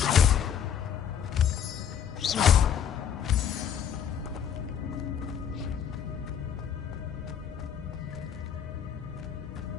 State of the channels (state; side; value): quieter; right; 8.5 dB